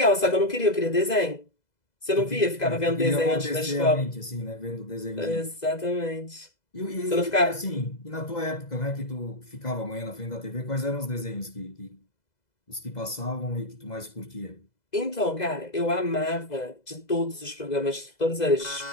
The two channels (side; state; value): right; late; 2.0 ms